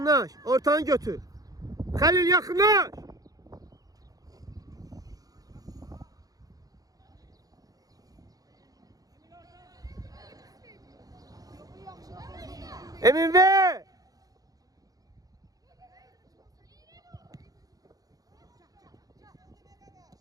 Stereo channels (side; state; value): left; late; 0.18 ms